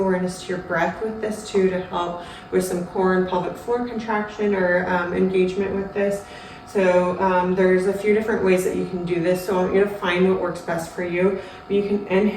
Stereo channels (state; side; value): identical; both; correlation 1.00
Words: to your breath with this too, to help with some core and pelvic floor contraction or engagement with this. So there's a few different ways that you can do this. So I want you to find what works best for you. You can